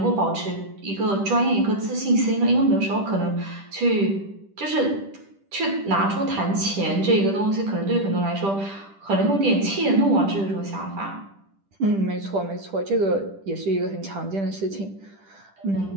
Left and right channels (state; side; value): late; left; 10 ms